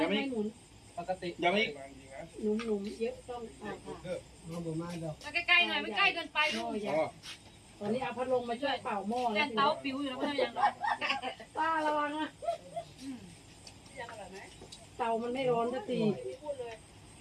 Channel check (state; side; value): identical; both; correlation 1.00